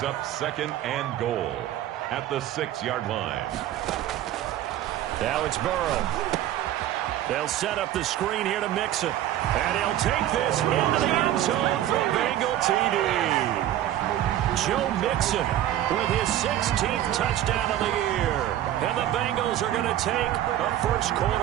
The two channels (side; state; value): left; quieter; 12.6 dB